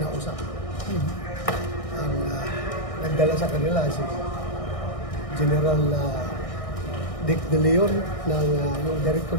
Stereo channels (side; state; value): right; late; 1.6 ms